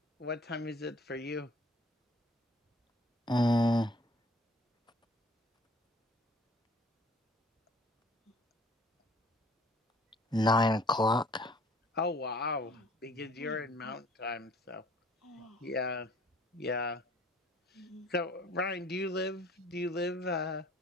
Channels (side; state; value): both; normal; correlation 0.54